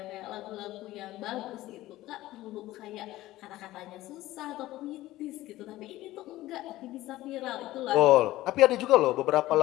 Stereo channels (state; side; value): quieter; right; 16.4 dB